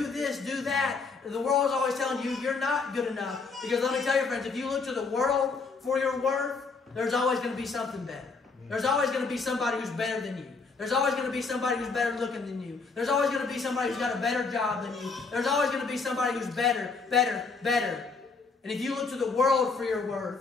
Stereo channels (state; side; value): quieter; right; 4.5 dB